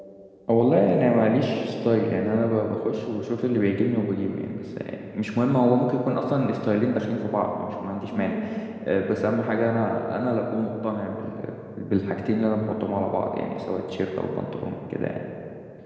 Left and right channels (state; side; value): identical; both; correlation 1.00